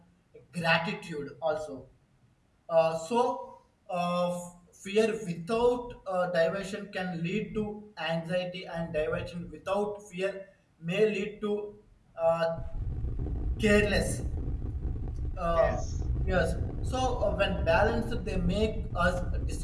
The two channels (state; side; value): identical; both; correlation 1.00